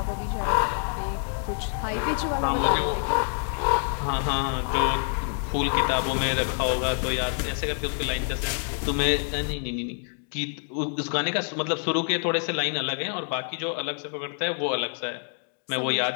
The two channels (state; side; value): silent; right; 60 dB below the other